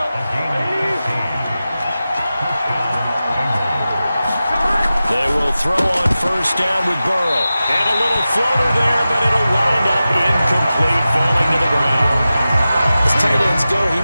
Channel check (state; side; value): inverted; both; correlation -0.94